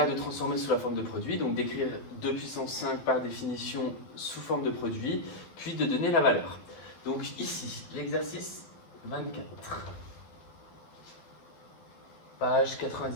de transformer sous la forme de produit, donc d'écrire 2 puissance 5 par définition sous forme de produit, puis de donner la valeur. Donc ici, l'exercice 24, page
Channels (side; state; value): right; late; 12 ms